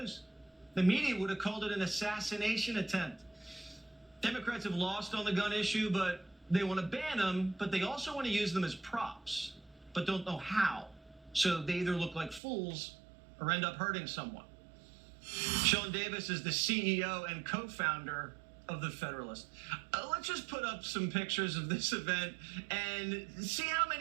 The media would have called it an assassination attempt. Democrats have lost on the gun issue, but they want to ban them, but they also want to use them as props, but don't know how. So they either look like fools or end up hurting someone. Sean Davis is the CEO and co-founder of The Federalist. Let's just put up some pictures of this event and see how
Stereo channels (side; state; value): left; drops out; at 12.4 s